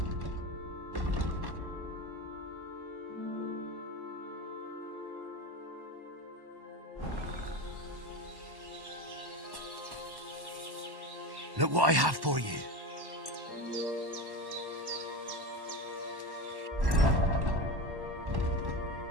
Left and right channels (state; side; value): late; left; 1.1 ms